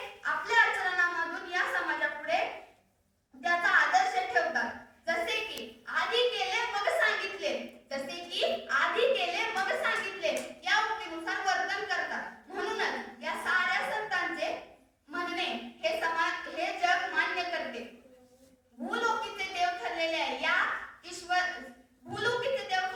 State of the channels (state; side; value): identical; both; correlation 1.00